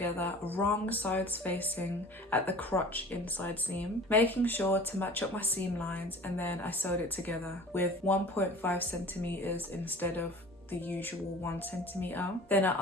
wrong sides facing at the crotch inside seam, making sure to match up my seam lines, and then I sewed it together with 1.5 centimeters instead of the usual 1 centimeter. Then I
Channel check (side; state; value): both; normal; correlation 0.42